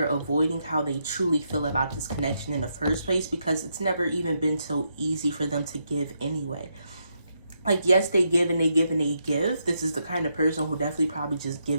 avoiding how they truly feel about this connection in the first place, because it's never even been so easy for them to give anyway. Like, yes, they give and they give and they give. This is the kind of person who definitely probably just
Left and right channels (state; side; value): inverted; both; correlation -0.80